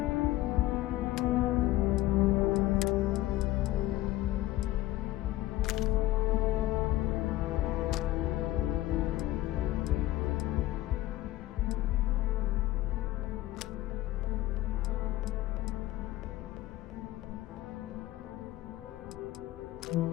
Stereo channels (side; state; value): right; quieter; 16.1 dB